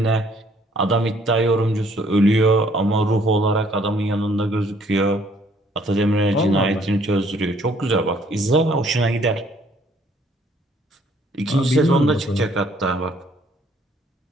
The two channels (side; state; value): both; normal; correlation 0.63